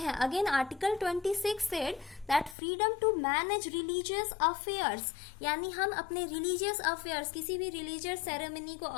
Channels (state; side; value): drops out; right; at 2.6 s